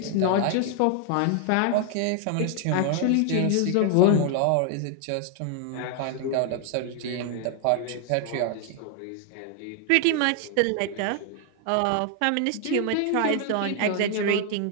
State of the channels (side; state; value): both; different; correlation 0.00